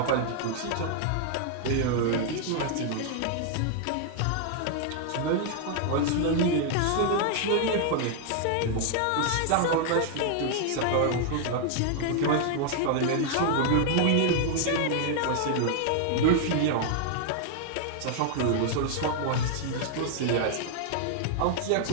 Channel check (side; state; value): both; different; correlation 0.00